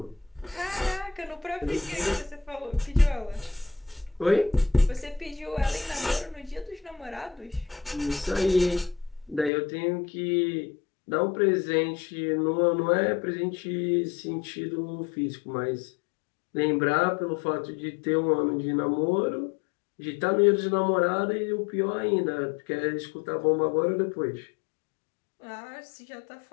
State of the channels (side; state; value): right; drops out; at 9.5 s